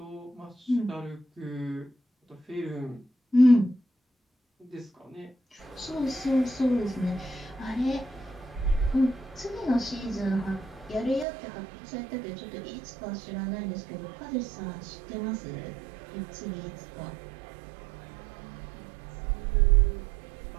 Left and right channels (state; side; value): drops out; left; at 11.2 s